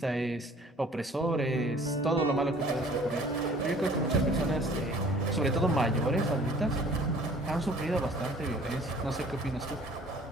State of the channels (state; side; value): normal; both; correlation 0.52